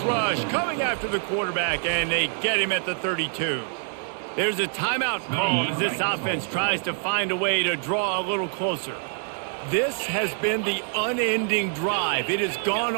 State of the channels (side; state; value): left; silent; 61 dB below the other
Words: rush coming after the quarterback, and they get him at the 32. There's a timeout called as this offense tries to find a way to draw a little closer. This has been the unending drive. It has gone